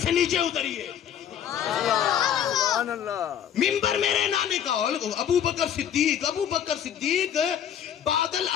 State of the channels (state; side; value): quieter; right; 9.3 dB